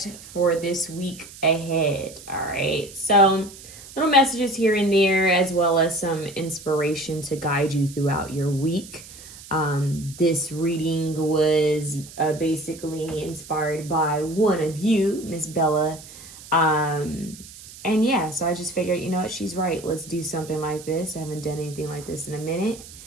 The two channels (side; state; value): right; noise; hiss, 17 dB below the sound